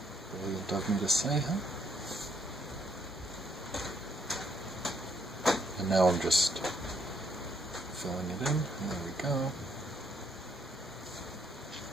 brilliant of me to say, huh? And now I'm just filling it in. There we go.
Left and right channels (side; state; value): both; normal; correlation 0.71